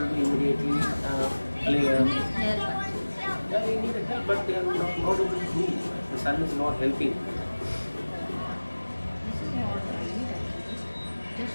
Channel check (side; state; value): both; inverted; correlation -1.00